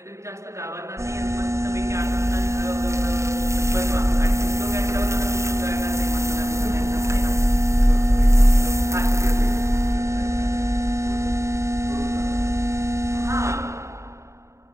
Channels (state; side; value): late; left; 0.14 ms